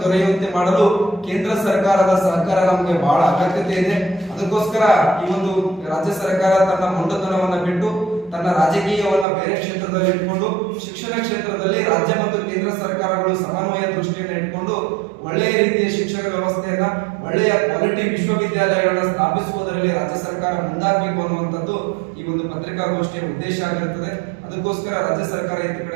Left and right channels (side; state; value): left; drops out; at 9.2 s